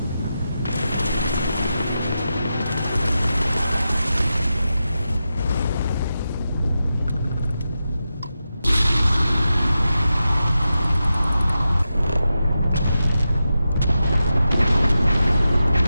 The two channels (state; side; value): inverted; both; correlation -0.90